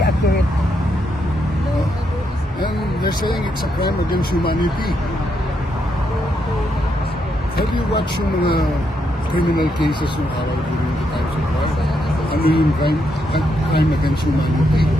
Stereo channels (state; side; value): normal; both; correlation 0.79